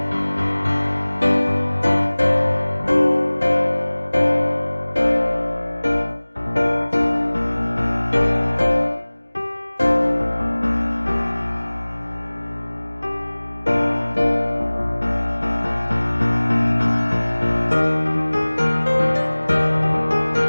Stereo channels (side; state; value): both; inverted; correlation -1.00